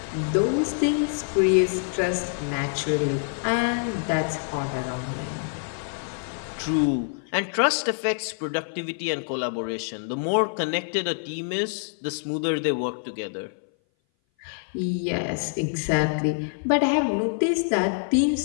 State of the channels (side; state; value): right; silent; 58 dB below the other